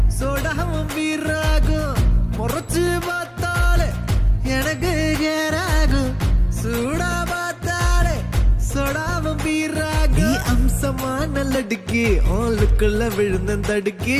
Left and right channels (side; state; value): both; identical; correlation 1.00